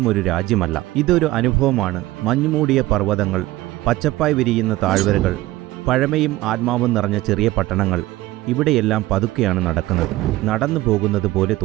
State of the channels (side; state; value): left; quieter; 17.6 dB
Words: ഒരു രാജ്യമല്ല, ഇതൊരു അനുഭവമാണ്. മഞ്ഞുമൂടിയ പർവ്വതങ്ങൾ, പച്ചപ്പായി വിരിയുന്ന താഴ്വരകൾ, പഴമയും ആത്മാവും നിറഞ്ഞ ചെറിയ പട്ടണങ്ങൾ. ഇവിടെയെല്ലാം പതുക്കെയാണ് നടക്കുന്നത്, നടന്നു പോകുന്നത് പോലെ